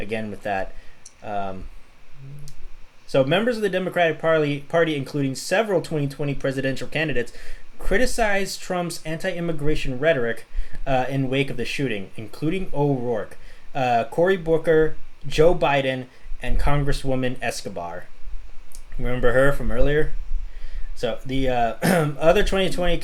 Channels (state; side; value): identical; both; correlation 1.00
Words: with that. So members of the Democratic Party, including several 2020 presidential candidates, criticized Trump's anti-immigration rhetoric in wake of the shooting, including O'Rourke, Cory Booker, Joe Biden, and Congresswoman Escobar. Remember her from earlier? So the other 2020